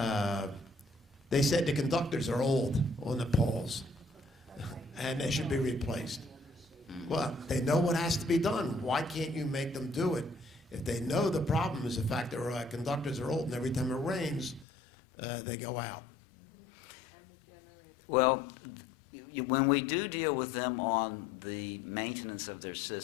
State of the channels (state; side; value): drops out; right; at 14.7 s